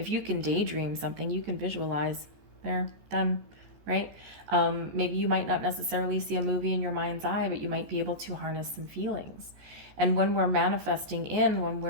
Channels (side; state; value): left; late; 14 ms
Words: you can daydream something, you can visualize. There, done, right? Maybe you might not necessarily see a movie in your mind's eye, but you might be able to harness some feelings. And when we're manifesting in, when